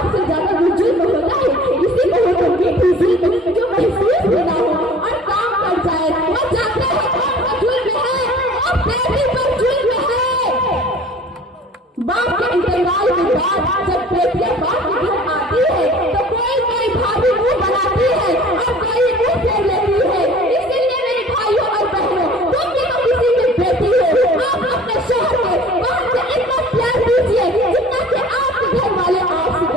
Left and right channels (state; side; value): normal; both; correlation 0.47